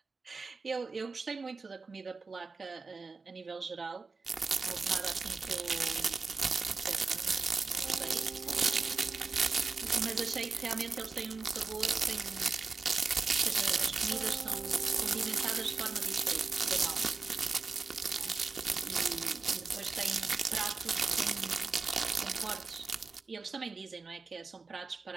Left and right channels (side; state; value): left; quieter; 4.3 dB